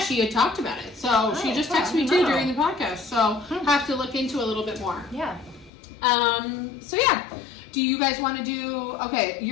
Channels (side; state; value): right; drops out; at 5.7 s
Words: had talked about it. So she just texted me too during the podcast. So have to look into a little bit more. Yeah. So yeah. Do you guys want to do, okay,